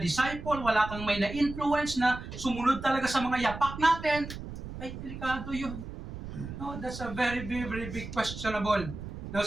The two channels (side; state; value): right; noise; rumble, 10 dB below the sound